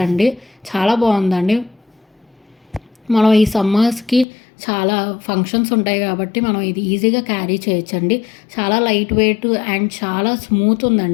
అండి. చాలా బాగుందండి. మనం ఈ సమ్మర్స్కి చాలా ఫంక్షన్స్ ఉంటాయి కాబట్టి మనం ఇది ఈజీగా క్యారీ చేయొచ్చండి. చాలా లైట్ వెయిట్ అండ్ చాలా స్మూత్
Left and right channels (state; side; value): drops out; right; at 4.2 s